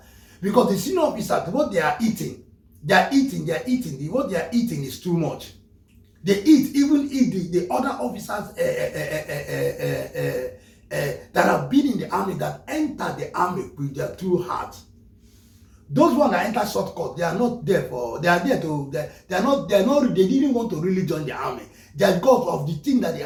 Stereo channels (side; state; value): both; identical; correlation 1.00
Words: Because the senior officers, what they are eating, what they are eating is too much. They even eat the other officers that have been in the army, that enter the army with their true heart. Those ones that enter shortcut, they are not there for, they didn't want to really join the army. They are because of the thing that they